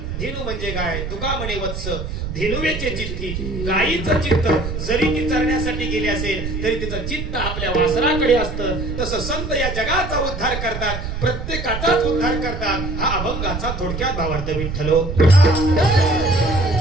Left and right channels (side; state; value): right; noise; rumble, 5 dB below the sound